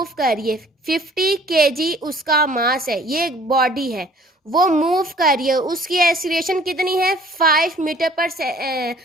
कर रही है 50 kg उसका मास है। ये एक बॉडी है वो मूव कर रही है। उसकी एक्सीलरेशन कितनी है 5 मीटर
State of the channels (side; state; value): both; normal; correlation 0.54